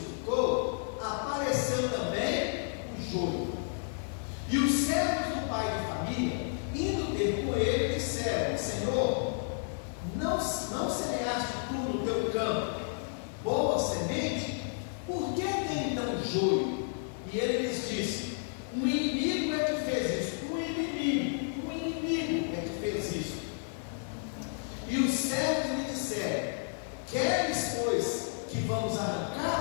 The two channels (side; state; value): right; silent; digital silence